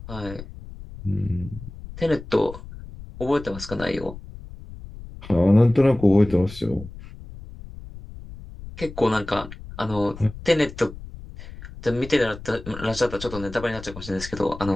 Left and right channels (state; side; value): noise; left; rumble, 14 dB below the sound